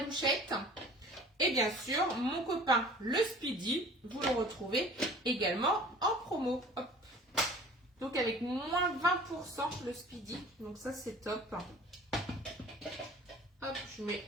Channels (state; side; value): normal; both; correlation 0.46